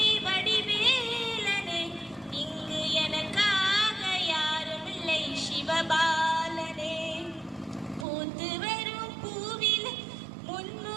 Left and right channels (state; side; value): drops out; left; at 8.1 s